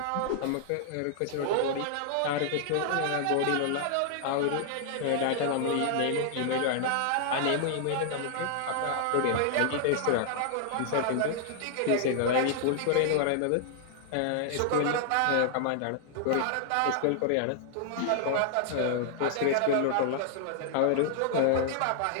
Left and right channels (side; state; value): both; different; correlation -0.01